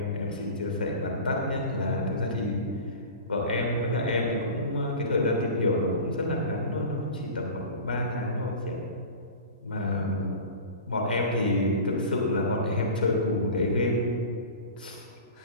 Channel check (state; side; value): inverted; both; correlation -0.35